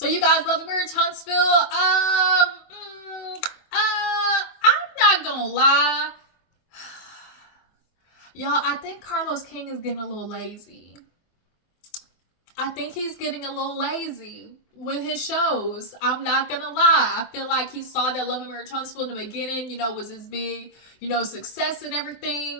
you guys, love and Marriage Huntsville. I'm not gonna lie, y'all. I think Carlos King is getting a little lazy. I think he's getting a little lazy with his shows. I'm not gonna lie. I feel like he saw that Love and Marriage Huntsville in the beginning, was his big, success and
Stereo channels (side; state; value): right; late; 24 ms